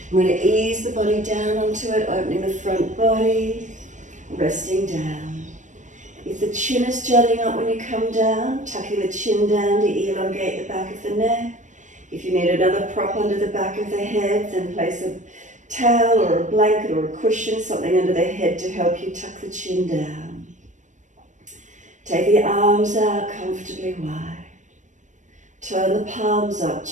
I'm going to ease the body down onto it, opening the front body, resting down. If the chin is jutting up when you come down, tucking the chin down to elongate the back of the neck. If you need another prop under the back of the head, then place a towel or a blanket or a cushion, something under the head to help you tuck the chin down. Take the arms out comfortably wide. Turn the palms up,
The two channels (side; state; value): left; late; 0.35 ms